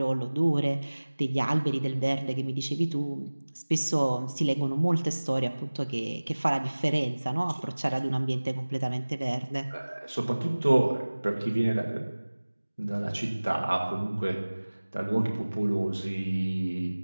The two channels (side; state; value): both; inverted; correlation -1.00